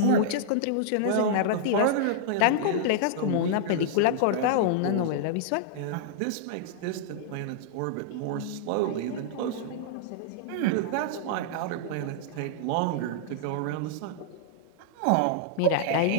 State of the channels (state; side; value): different; both; correlation -0.01